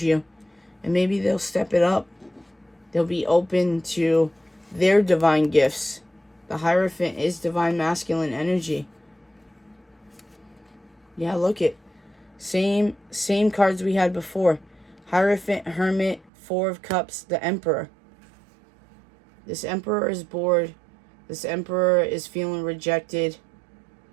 you. And maybe they'll step it up. They'll be open to their divine gifts. The Hierophant is divine masculine energy. Yeah, look it. Same cards we had before. Hierophant, Hermit, Four of Cups, the Emperor. This Emperor is bored. This Emperor is feeling rejected.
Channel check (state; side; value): drops out; left; at 16.3 s